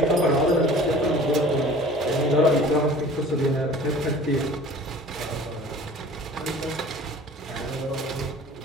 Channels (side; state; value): both; normal; correlation 0.46